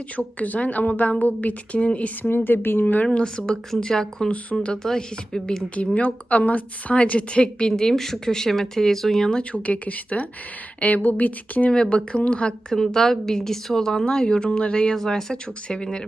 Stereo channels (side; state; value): both; normal; correlation 0.95